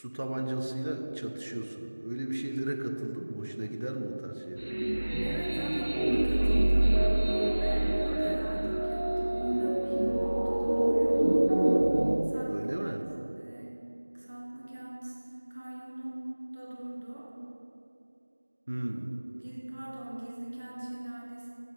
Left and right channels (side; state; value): both; inverted; correlation -1.00